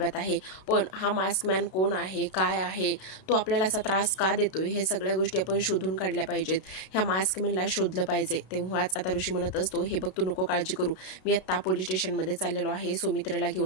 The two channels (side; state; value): right; late; 32 ms